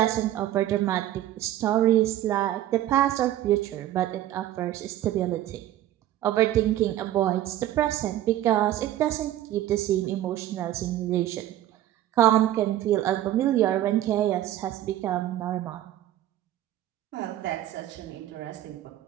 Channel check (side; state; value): left; quieter; 13.2 dB